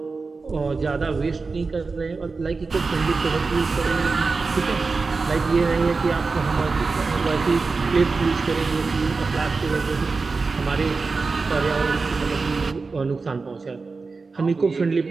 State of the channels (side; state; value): left; quieter; 4.2 dB